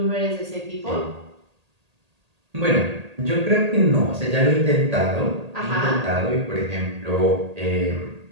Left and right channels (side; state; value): left; late; 1.8 ms